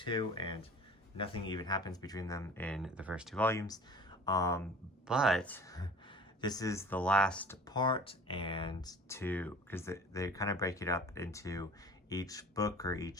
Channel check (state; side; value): normal; both; correlation 0.43